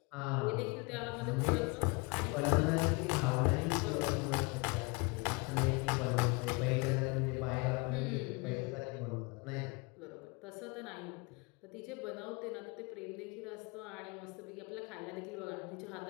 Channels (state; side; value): quieter; right; 28.9 dB